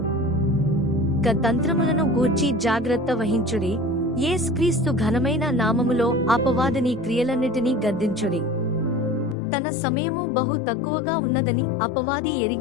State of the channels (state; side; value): drops out; right; at 9.3 s